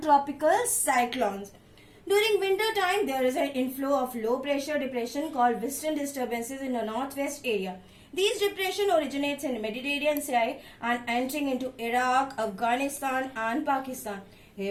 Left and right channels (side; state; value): both; identical; correlation 1.00